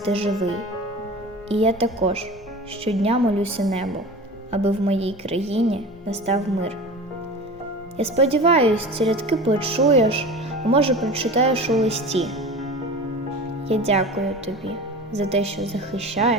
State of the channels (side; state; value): both; normal; correlation 0.34